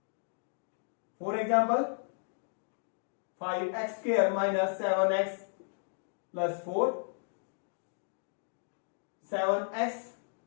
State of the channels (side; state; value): right; silent; digital silence